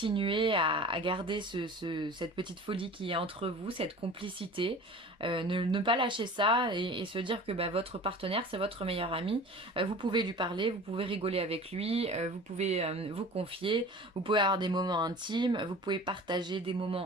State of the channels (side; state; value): both; normal; correlation 0.40